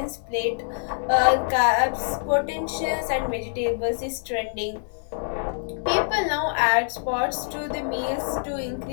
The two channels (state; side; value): silent; right; digital silence